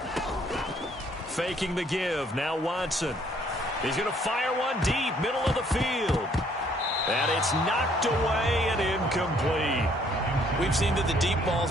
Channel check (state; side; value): normal; both; correlation 0.64